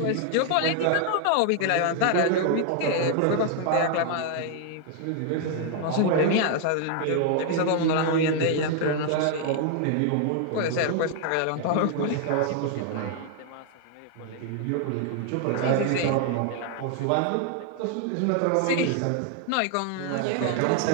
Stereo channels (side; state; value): both; different; correlation 0.00